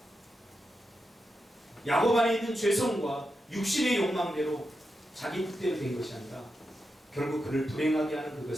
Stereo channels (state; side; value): normal; both; correlation 0.88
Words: 야곱 안에 있는 죄성과 육신의 욕망대로 자기 뜻대로 된 것이 아니라 결국 그를 불행하게 하는